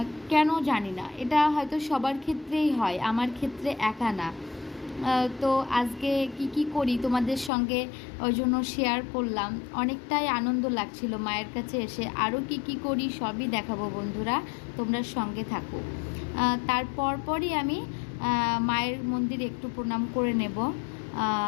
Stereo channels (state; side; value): drops out; right; at 7.5 s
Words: কেন জানি না, এটা হয়তো সবার ক্ষেত্রেই হয়, আমার ক্ষেত্রে একা না। তো আজকে কি করি তোমাদের সঙ্গে ওই জন্য শেয়ার করলাম। অনেকটাই আনন্দ লাগছিল মায়ের কাছে এসে। আরও কি করি সবই দেখাবো বন্ধুরা, তোমরা সঙ্গে থাকো। তারপরই আমি মায়ের মন্দিরে একটু প্রণাম করে নেব,